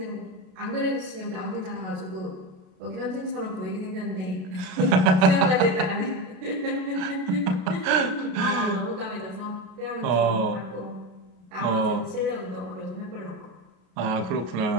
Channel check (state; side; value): late; left; 33 ms